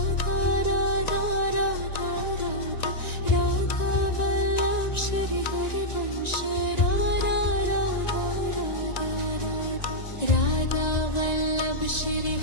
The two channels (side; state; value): right; late; 1.9 ms